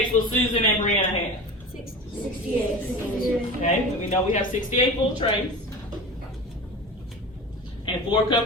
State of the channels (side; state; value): both; normal; correlation 0.32